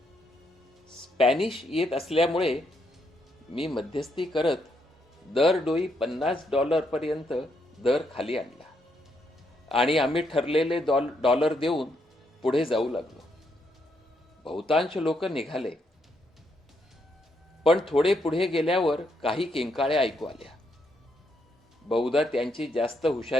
स्पॅनिश येत असल्यामुळे मी मध्यस्थी करत दरडोई $50 पर्यंत दर खाली आणला आणि आम्ही ठरलेले डॉलर देऊन पुढे जाऊ लागलो. बहुतांश लोक निघाले, पण थोडे पुढे गेल्यावर काही किंकाळ्या ऐकू आल्या. बहुधा त्यांची जास्त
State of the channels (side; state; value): both; normal; correlation 0.77